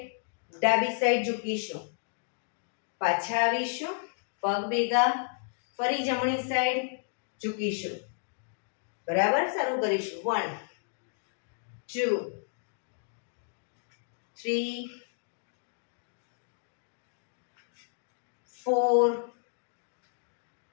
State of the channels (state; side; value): silent; right; digital silence